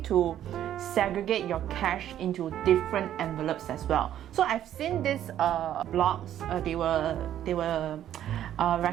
to segregate your cash into different envelopes as well. So I've seen these blogs. They were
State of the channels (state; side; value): quieter; left; 11.3 dB